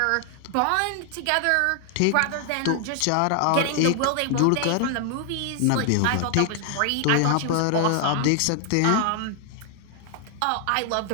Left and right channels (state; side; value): different; both; correlation 0.00